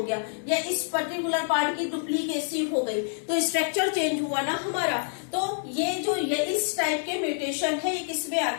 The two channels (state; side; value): silent; right; digital silence